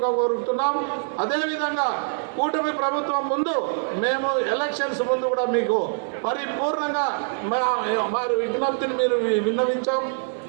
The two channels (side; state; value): left; silent; 62 dB below the other